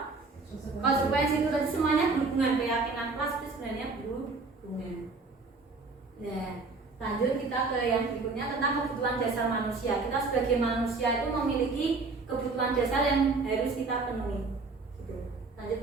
Konsekuensi itu tadi semuanya berhubungan. Keyakinan kelas itu sebenarnya berhubungan. Nah, lanjut kita ke yang berikutnya tentang kebutuhan dasar manusia. Kita sebagai manusia itu memiliki kebutuhan dasar yang harus kita penuhi. Gitu. Lanjut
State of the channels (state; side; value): quieter; left; 3.9 dB